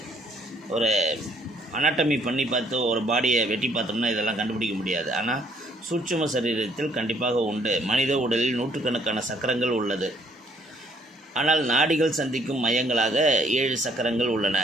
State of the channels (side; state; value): both; normal; correlation 0.65